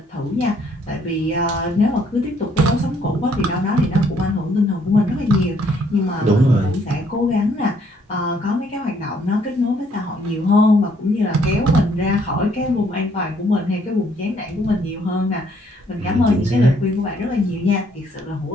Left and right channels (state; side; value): normal; both; correlation 0.66